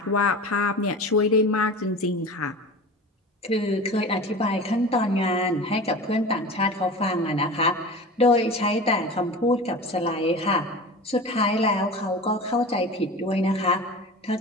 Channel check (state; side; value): normal; both; correlation 0.34